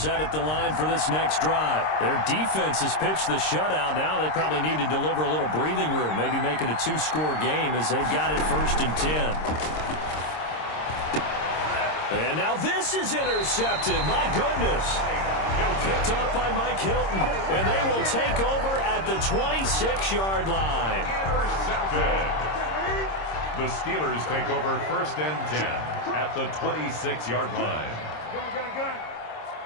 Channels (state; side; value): late; right; 26 ms